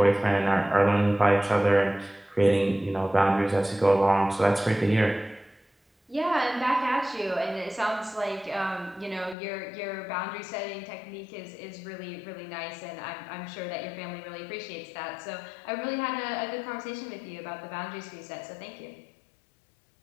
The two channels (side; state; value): right; drops out; at 9.3 s